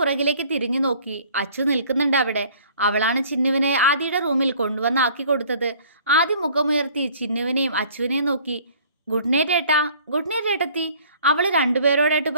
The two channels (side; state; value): both; inverted; correlation -0.54